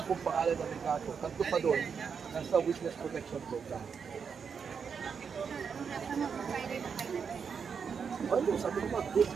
kong pangalan ng may kaso. Tatlo pa doon, nasa witness protection program. Ano, sabi ko ba, good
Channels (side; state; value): left; quieter; 6.3 dB